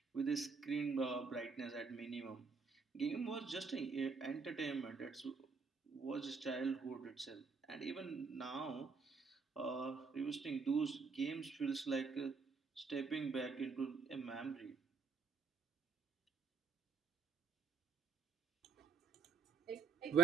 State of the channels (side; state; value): left; quieter; 4.7 dB